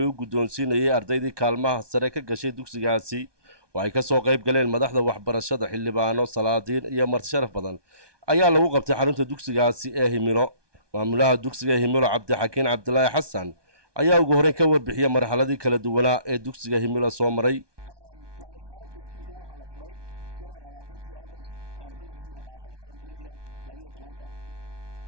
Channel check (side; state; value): left; late; 1.2 ms